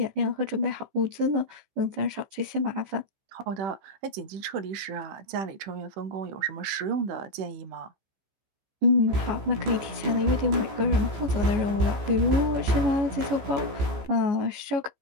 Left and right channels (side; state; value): left; late; 15 ms